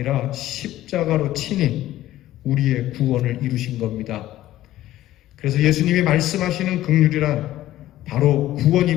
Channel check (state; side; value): quieter; right; 14.4 dB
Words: 십자가로 친히 우리의 구원을 이루신 겁니다. 그래서 예수님이 말씀하시는 긍휼이란 바로